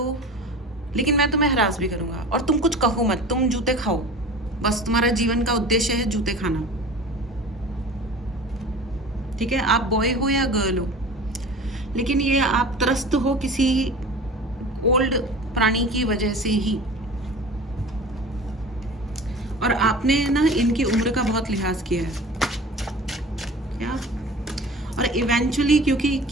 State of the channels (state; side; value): normal; both; correlation 0.38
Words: लेकिन मैं तुम्हें हरास भी करूँगा, और तुम कुछ कहो मत, तुम जूते खाओ, बस तुम्हारा जीवन का उद्देश्य है जूते खाना, ठीक है। आप बॉय हो या गर्ल हो, लेकिन ये आप त्रस्त हो किसी ओल्ड प्राणी की वजह से ही, और आपने ना इनकी उम्र का बहुत लिहाज किया है क्या। और इवेंचुअली, क्योंकि